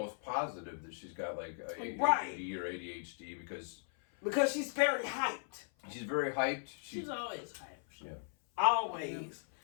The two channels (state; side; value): silent; right; 53 dB below the other